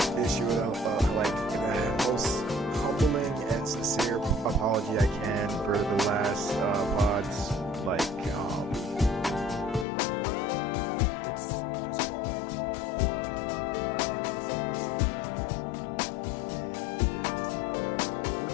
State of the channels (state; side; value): drops out; right; at 9.9 s